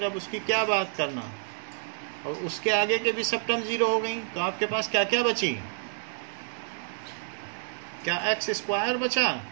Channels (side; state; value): left; silent; digital silence